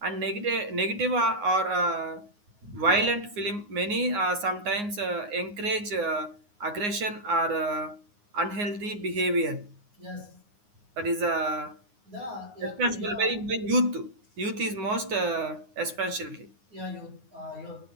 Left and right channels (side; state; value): left; late; 9.6 ms